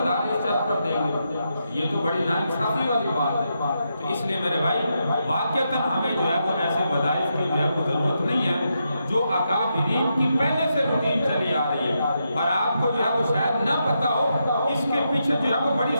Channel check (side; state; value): both; inverted; correlation -0.83